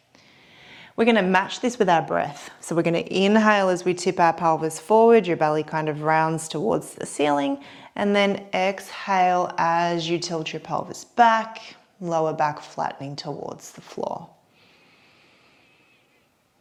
We're going to match this with our breath. So we're going to inhale as we tip our pelvis forward, your belly kind of rounds towards the ceiling, and then exhale as you tilt your pelvis back, lower back flattening towards the floor.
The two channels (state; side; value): identical; both; correlation 1.00